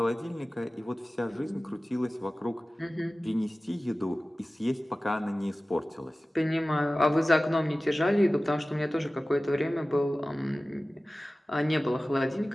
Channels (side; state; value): both; normal; correlation 0.97